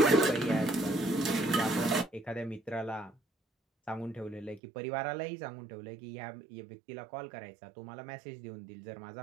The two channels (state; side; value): drops out; left; at 4.6 s